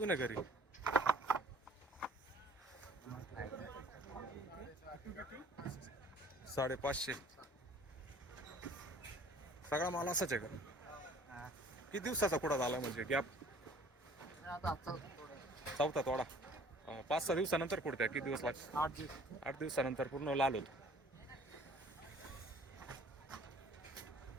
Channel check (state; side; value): normal; both; correlation 0.53